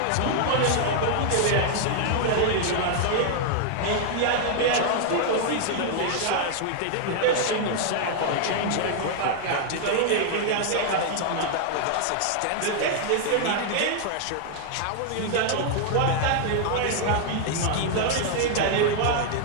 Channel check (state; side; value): different; both; correlation 0.00